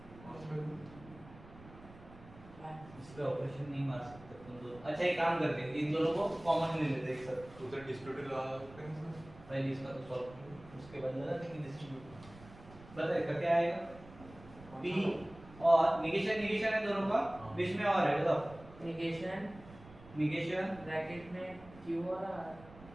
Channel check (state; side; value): noise; right; rumble, 20 dB below the sound